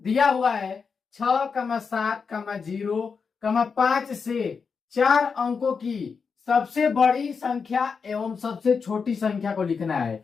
हुआ है 6,7,0,5 से 4 अंकों की सबसे बड़ी संख्या एवं सबसे छोटी संख्या को लिखना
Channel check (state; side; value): quieter; right; 5.5 dB